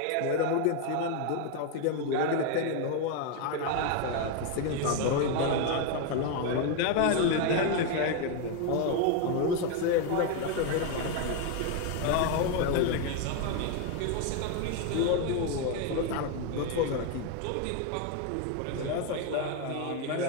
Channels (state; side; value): different; both; correlation 0.01